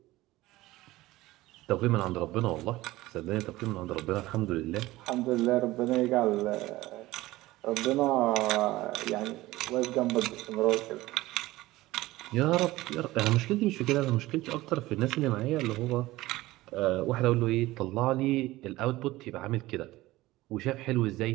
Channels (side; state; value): left; quieter; 18.0 dB